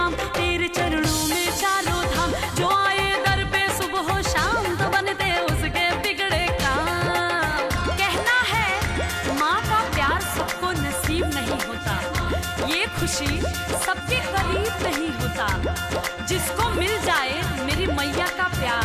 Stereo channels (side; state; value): both; identical; correlation 1.00